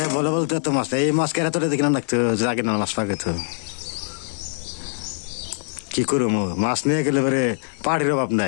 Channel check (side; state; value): right; silent; digital silence